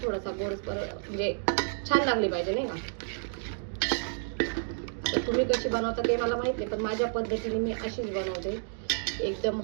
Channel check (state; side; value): silent; left; digital silence